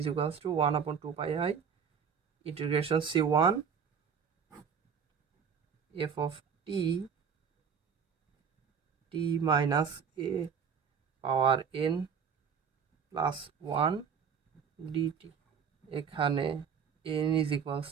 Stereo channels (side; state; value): left; quieter; 6.8 dB